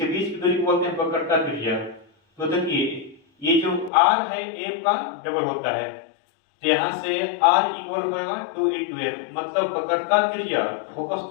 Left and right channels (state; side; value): drops out; right; at 3.9 s